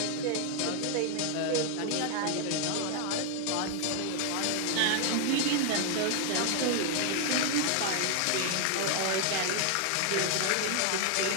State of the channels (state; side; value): different; both; correlation 0.00